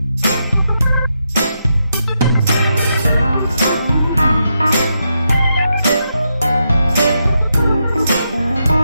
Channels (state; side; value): inverted; both; correlation -0.83